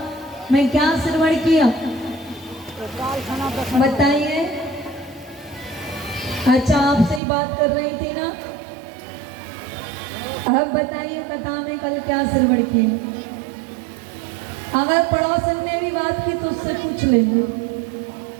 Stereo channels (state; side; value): drops out; left; at 7.2 s